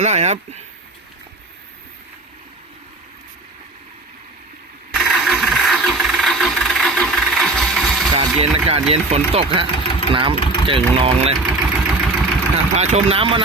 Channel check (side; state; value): left; quieter; 3.1 dB